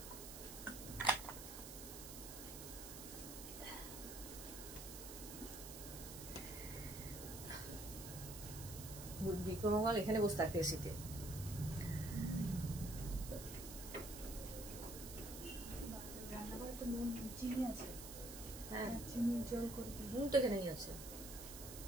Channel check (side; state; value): right; noise; hiss, 10 dB below the sound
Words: বিক্রমঙ্গল এখানে বসে থাকতে এসেছে।